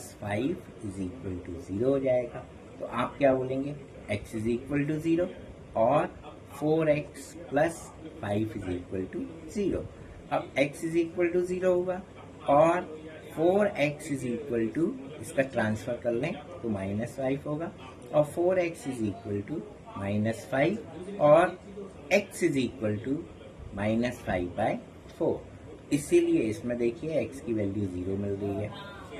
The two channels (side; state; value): both; identical; correlation 1.00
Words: 5 is equal to 0 हो जाएगा। तो आप क्या बोलेंगे, x इज इक्वल टू 0 और 4x plus 5 is equal to 0। अब x इज इक्वल टू 0 होगा और 4x इज इक्वल टू, इसका ट्रांसफर कर लें तो -5 होगा और 4x इज इक्वल टू -5 और x इज इक्वल टू -5/4। इसीलिए इसमें देखिए x की वैल्यू 0 मिल रही है।